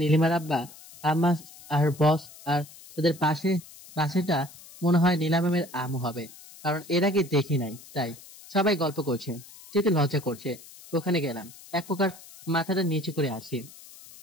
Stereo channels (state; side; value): noise; left; hiss, 19 dB below the sound